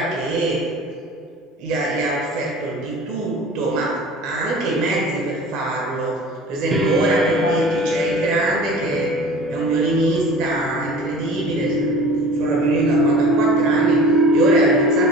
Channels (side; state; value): both; normal; correlation 0.41